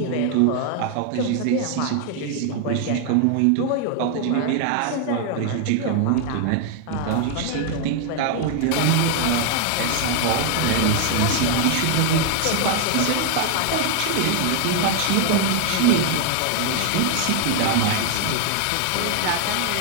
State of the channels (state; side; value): different; both; correlation 0.00